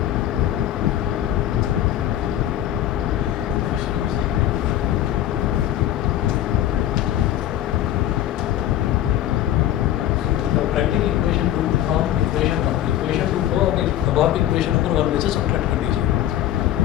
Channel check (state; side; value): quieter; right; 12.2 dB